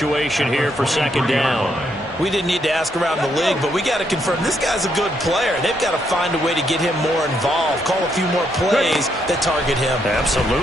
here for 2nd down. We didn't need to ask around the league, but we got to confirm this guy's a good player. They've got to find a way to get him more involved, call a few more plays that target him.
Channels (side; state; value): both; normal; correlation 0.76